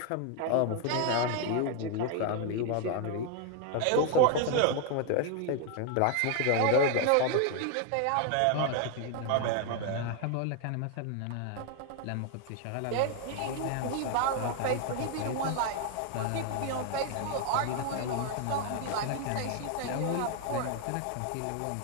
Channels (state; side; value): different; both; correlation 0.01